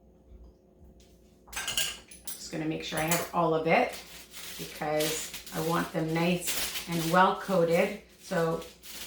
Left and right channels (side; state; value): both; identical; correlation 1.00